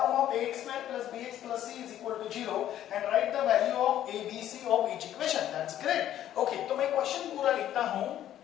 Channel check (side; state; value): right; quieter; 11.8 dB